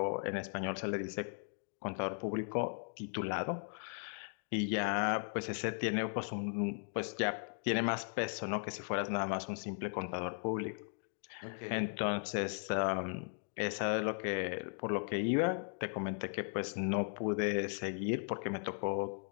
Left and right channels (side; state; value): right; silent; 53 dB below the other